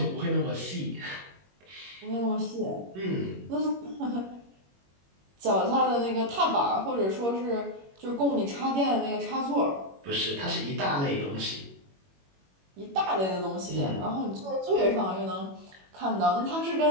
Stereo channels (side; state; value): left; late; 21 ms